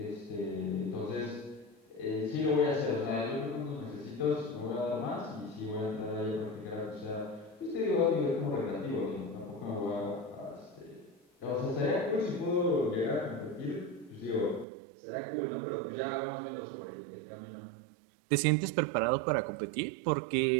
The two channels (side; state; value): left; drops out; at 14.7 s